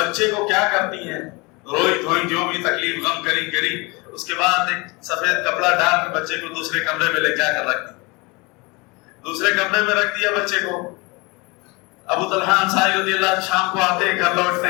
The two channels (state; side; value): quieter; right; 26.6 dB